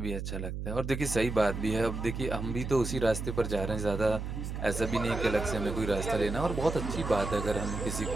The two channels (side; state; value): right; noise; hum, 5 dB below the sound